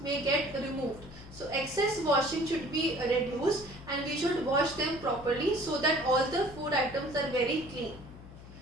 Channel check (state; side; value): noise; left; hum, 17 dB below the sound